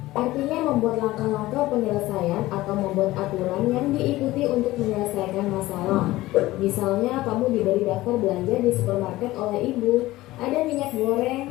Artinya membuat langkah-langkah penyelesaian atau membuat aturan yang diikuti untuk menyelesaikan masalah. Misalnya kamu diberi daftar belanja di supermarket oleh ibu. Ada minyak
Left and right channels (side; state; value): right; quieter; 17.5 dB